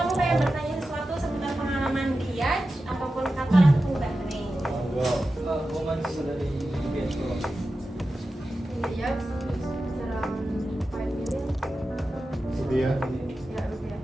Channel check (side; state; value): both; normal; correlation 0.92